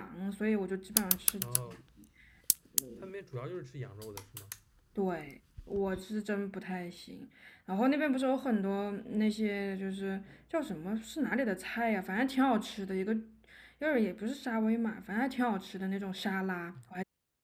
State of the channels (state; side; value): identical; both; correlation 1.00